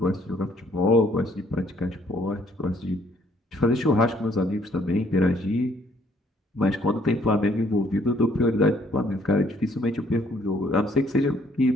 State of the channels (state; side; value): normal; both; correlation 0.65